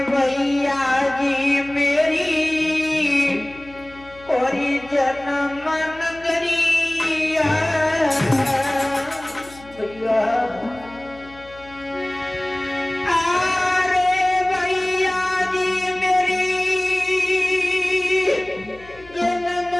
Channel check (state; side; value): noise; left; hum, 22 dB below the sound